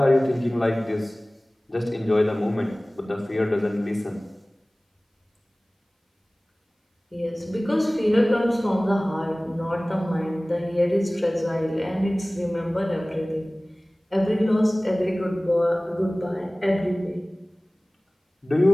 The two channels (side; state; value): both; normal; correlation 0.98